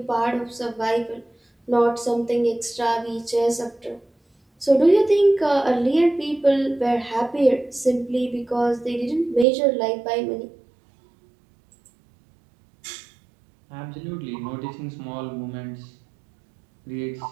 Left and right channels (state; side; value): drops out; left; at 9.5 s